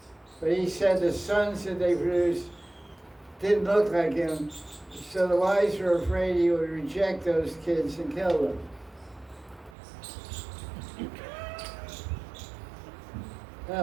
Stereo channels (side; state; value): left; drops out; at 9.8 s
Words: but he said the sons that they produced didn't look like him, so the wives were afraid he would reject those kids and kill them.